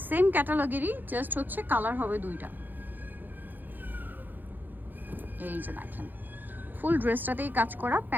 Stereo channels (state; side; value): late; left; 0.088 ms